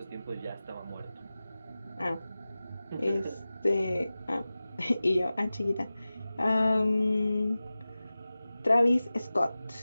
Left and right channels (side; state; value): both; inverted; correlation -0.96